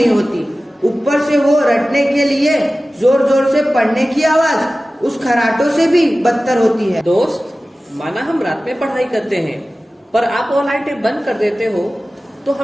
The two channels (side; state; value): both; normal; correlation 0.96